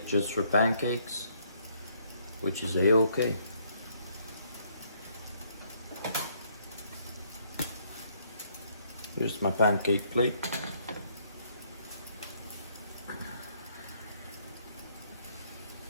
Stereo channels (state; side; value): inverted; both; correlation -0.68